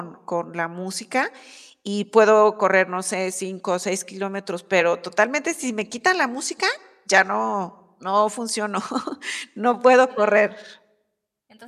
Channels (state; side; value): identical; both; correlation 1.00